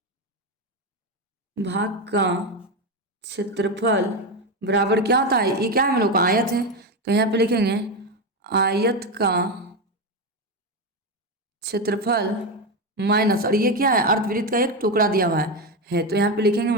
भाग का क्षेत्रफल बराबर क्या होता है, ये क्या है हम लोग का आयत है, तो यहाँ पे लिखेंगे आयत का क्षेत्रफल माइनस, और ये क्या है, अर्धवृत्त का एक टुकड़ा दिया हुआ है। तो यहाँ पे लिखेंगे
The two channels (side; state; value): both; normal; correlation 0.13